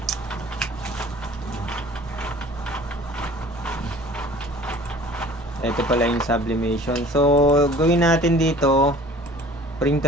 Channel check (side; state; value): both; normal; correlation 0.47